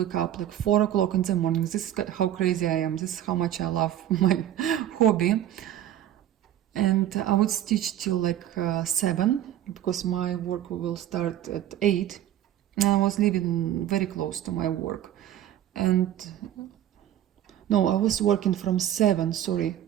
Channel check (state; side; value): quieter; left; 11.8 dB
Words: up like 4 o'clock in the morning. This is how crazy I am. This is how much I love my hobby. And I would stitch till like 7 because my work will start at 8. And I was living very close to my work. And no, I was working from 7, sorry.